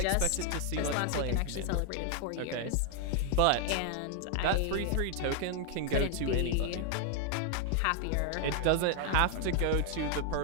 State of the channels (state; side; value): different; both; correlation 0.00